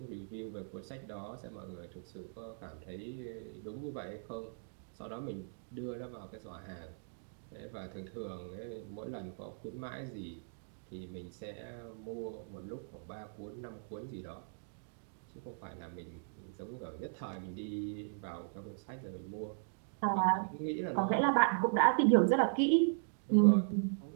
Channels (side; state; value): left; silent; digital silence